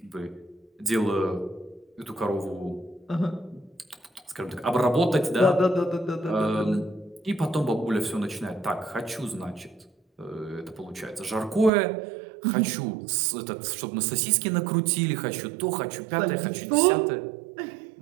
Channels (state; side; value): drops out; left; at 11.7 s